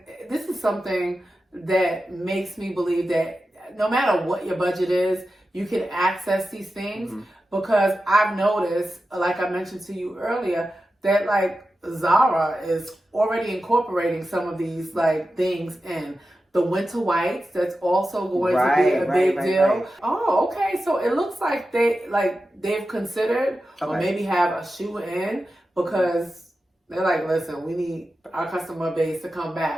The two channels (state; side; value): normal; both; correlation 0.92